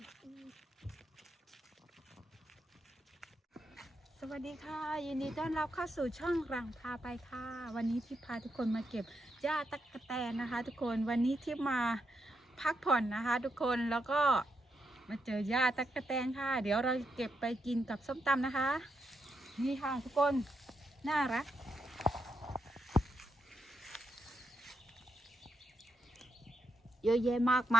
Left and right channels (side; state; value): both; normal; correlation 0.82